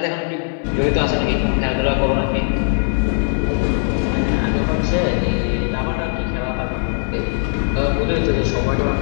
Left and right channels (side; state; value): right; silent; digital silence